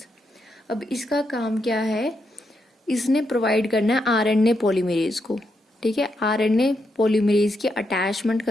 अब इसका काम क्या है, इसने provide करना है RNA polymerase को, ठीक है. आरएनए पॉलीमरेज की अटैचमेंट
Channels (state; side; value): normal; both; correlation 0.82